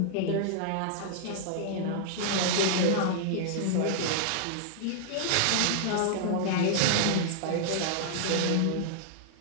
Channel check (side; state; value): both; different; correlation -0.01